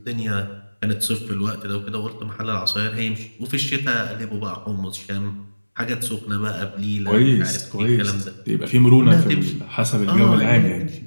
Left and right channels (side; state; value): both; inverted; correlation -1.00